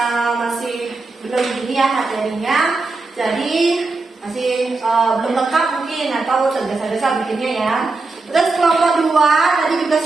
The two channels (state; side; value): quieter; left; 3.6 dB